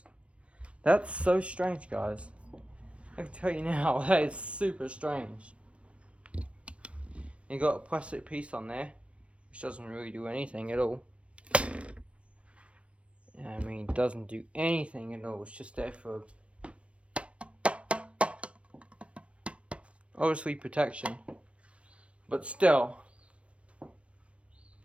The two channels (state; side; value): late; left; 0.061 ms